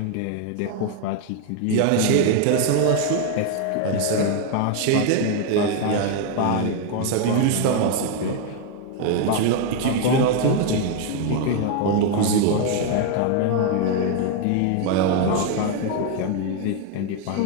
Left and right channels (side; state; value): both; different; correlation 0.01